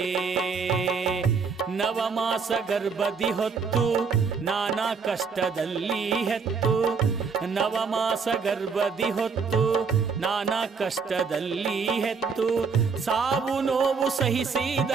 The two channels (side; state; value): left; quieter; 5.4 dB